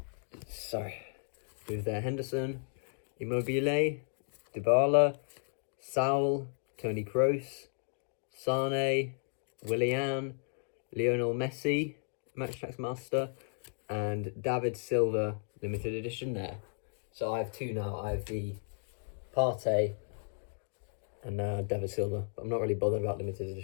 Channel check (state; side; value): silent; right; digital silence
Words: Move there, Henderson, Immobile, Dybala, Saul, Toni Kroos, Sane, Willian, Lionel Messi, Attax Master, and David Silva limited edition there. So I have 2 now. I have the Partey and David Silva. But I'm not really bothered about limited